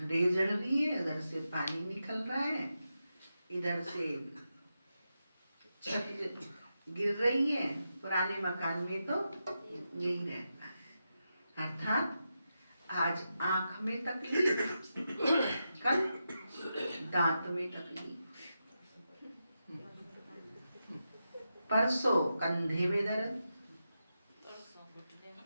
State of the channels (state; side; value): inverted; both; correlation -0.88